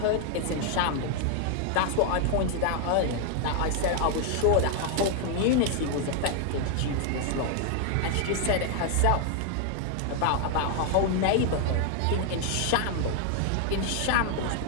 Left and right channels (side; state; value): both; different; correlation 0.00